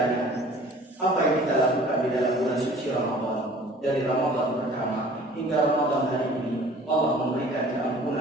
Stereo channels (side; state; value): both; normal; correlation 0.49